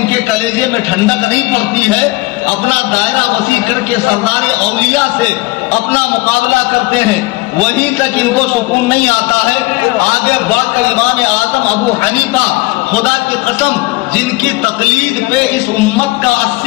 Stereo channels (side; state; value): right; quieter; 22.3 dB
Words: کے کلیجے میں ٹھنڈک نہیں پڑتی ہے. اپنا دائرہ وسیع کر کے سردار اولیاء سے اپنا مقابلہ کرتے ہیں, وہیں تک ان کو سکون نہیں آتا ہے. آگے بڑھ کر امام اعظم ابو حنیفہ خدا کی قسم جن کی تقلید پہ اس امت کا